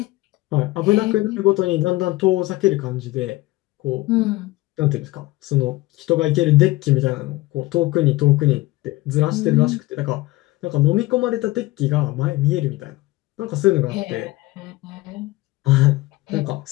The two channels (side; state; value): right; quieter; 19.2 dB